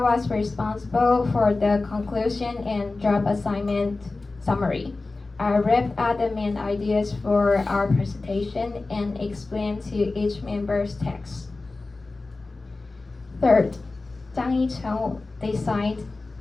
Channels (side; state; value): right; quieter; 3.4 dB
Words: was responsible for the conclusion and job assignment summary. I wrapped up the main ideas for our presentation and explained to each member's text. Third, Zhang Yicheng designed